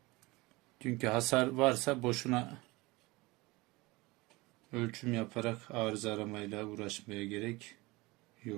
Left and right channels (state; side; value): quieter; left; 22.7 dB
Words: Çünkü hasar varsa boşuna ölçüm yaparak arıza aramayla uğraşmaya gerek